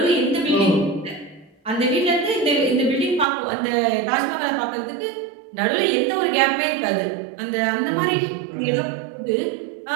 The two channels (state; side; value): drops out; left; at 3.2 s